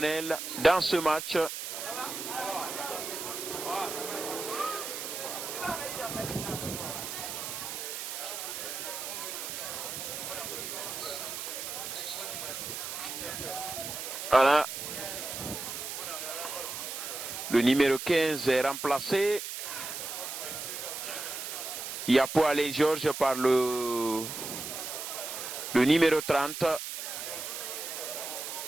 dans ce match? Voilà. Le numéro 15 est remplacé. Yapo Alain Georges par le numéro 30.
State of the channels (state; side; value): noise; right; hiss, 6 dB below the sound